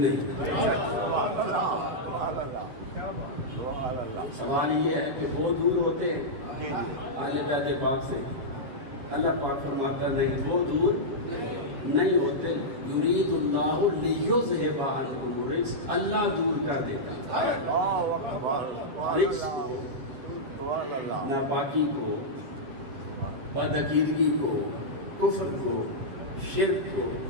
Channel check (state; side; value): late; left; 7.8 ms